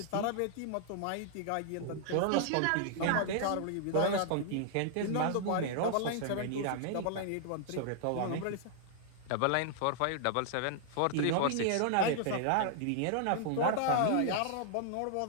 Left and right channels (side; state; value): both; different; correlation -0.01